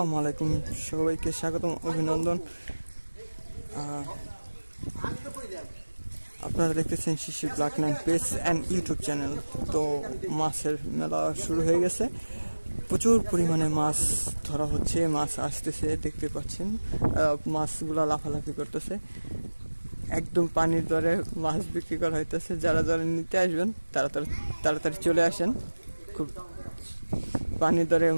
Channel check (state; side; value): inverted; both; correlation -1.00